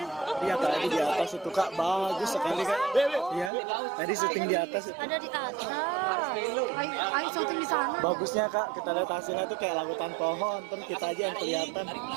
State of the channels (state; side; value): drops out; left; at 3.5 s